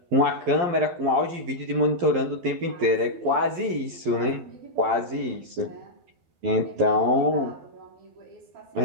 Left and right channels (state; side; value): late; left; 11 ms